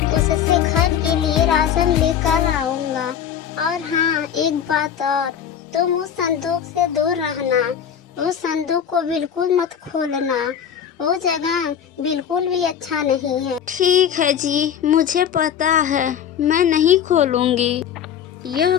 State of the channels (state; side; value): quieter; right; 8.8 dB